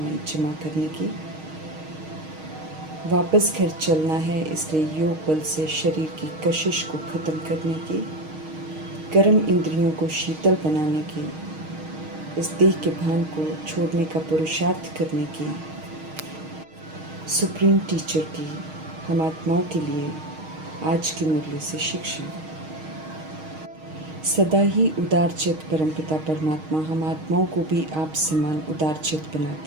जमा करने की। वापस घर चलना है, इसलिए योग बल से शरीर की कशिश को ख़त्म करने की, गर्म इंद्रियों को शीतल बनाने की, इस देह के भान को छोड़ने का पुरुषार्थ करने की, सुप्रीम टीचर की हम आत्माओं के लिए आज की मुरली से शिक्षा। सदा ही उदारचित परमपिता परमात्मा हम आत्माओं को भी आप समान उदारचित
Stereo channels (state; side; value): late; left; 6.4 ms